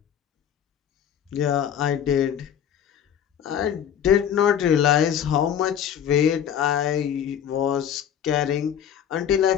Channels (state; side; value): quieter; right; 9.2 dB